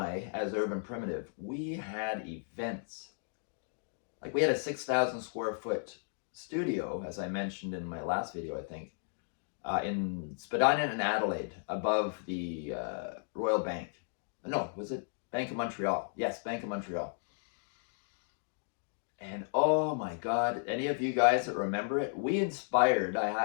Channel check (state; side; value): silent; right; digital silence